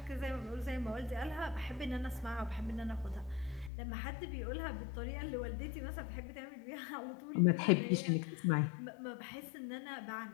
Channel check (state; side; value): drops out; right; at 3.7 s